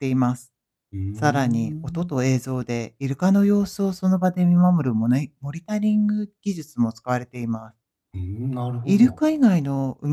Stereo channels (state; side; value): identical; both; correlation 1.00